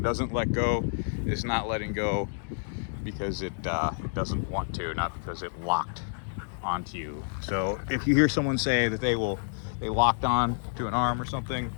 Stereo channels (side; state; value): right; silent; digital silence